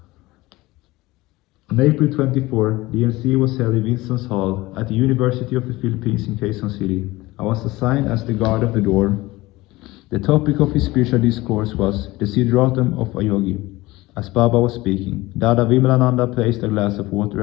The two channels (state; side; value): quieter; right; 19.8 dB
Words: On April 24, the MC was held in Winston's Hall at the University of the Philippines in Quezon City. I was assigned as the guard of the door. The topic of his spiritual discourse was the Siddharatam of a yogi. As Baba was speaking, Dada Vimalananda placed a glass of water